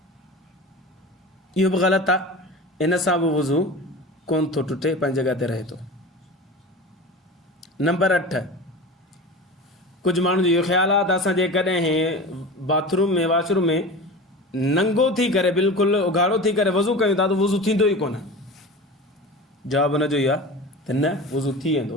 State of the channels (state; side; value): normal; both; correlation 0.32